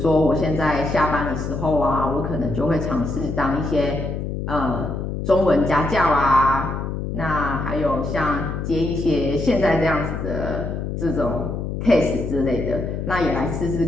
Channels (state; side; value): noise; left; hum, 4 dB below the sound